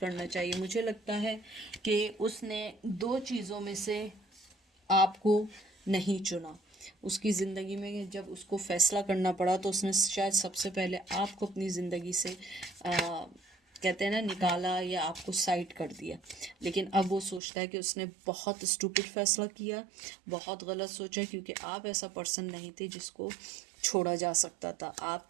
चाहिए। मुझे लगता है कि उसने दो चीज़ों में से आपको नहीं चुना। उसकी ज़िंदगी में जब उसको फ़ैसला करना पड़ा तो उसने शायद सबसे पहले आपको अपनी ज़िंदगी से कहते हैं ना निकाला, या आपको साइड कर दिया। लेकिन अब वो सोचता है कि उसने बहुत स्टूपिड फ़ैसला किया, बहुत गलत सोचा, क्योंकि आप ऐसा पर्सन नहीं थे जिसको छोड़ा जा सकता था। आप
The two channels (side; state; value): left; drops out; at 17.4 s